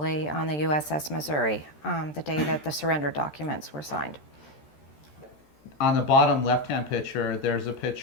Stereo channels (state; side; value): late; right; 13 ms